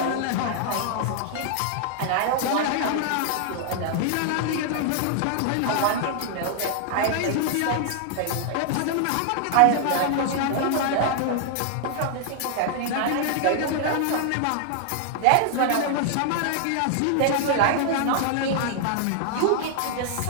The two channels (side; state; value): both; different; correlation 0.00